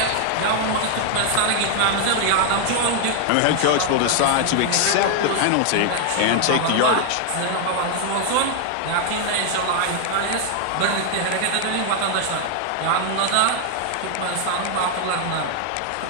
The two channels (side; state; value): both; different; correlation 0.00